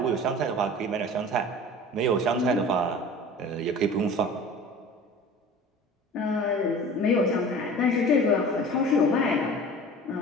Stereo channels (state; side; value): normal; both; correlation 0.40